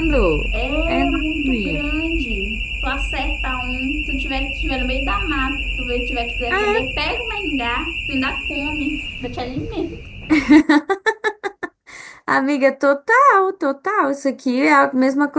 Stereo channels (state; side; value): identical; both; correlation 1.00